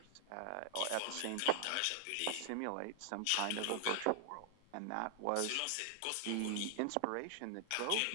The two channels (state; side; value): different; both; correlation 0.00